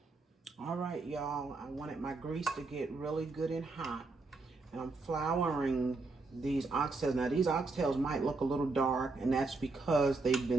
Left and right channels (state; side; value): quieter; left; 3.7 dB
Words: All right, y'all. I wanted my grease to get really good and hot. And I'm flouring these oxtails. Now, these oxtails might look a little dark, and that's because they've